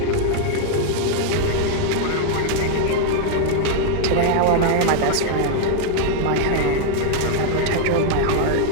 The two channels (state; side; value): different; both; correlation 0.00